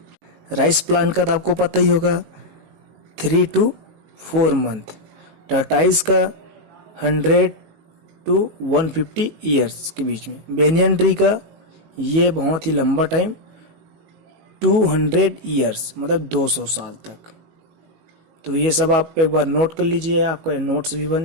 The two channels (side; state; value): left; late; 19 ms